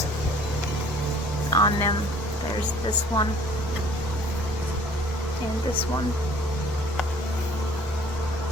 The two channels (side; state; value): both; normal; correlation 0.54